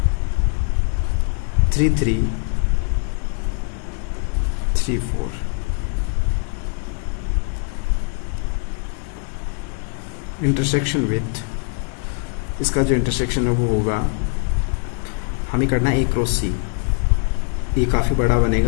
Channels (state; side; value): quieter; right; 38.6 dB